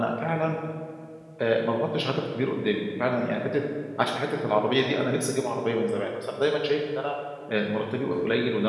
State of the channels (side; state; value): both; identical; correlation 1.00